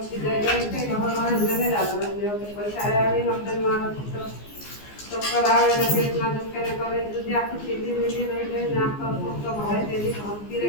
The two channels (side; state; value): right; late; 14 ms